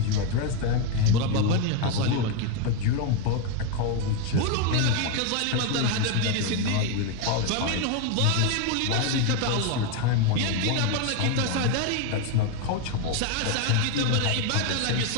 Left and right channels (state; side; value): different; both; correlation 0.02